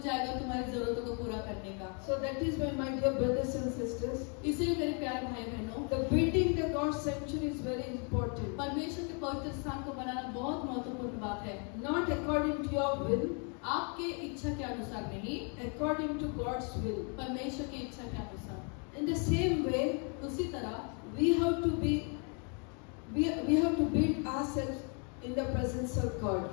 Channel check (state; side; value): quieter; right; 37.7 dB